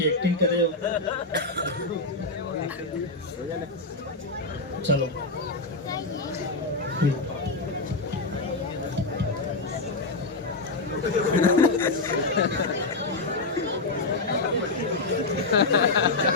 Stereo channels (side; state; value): right; quieter; 3.3 dB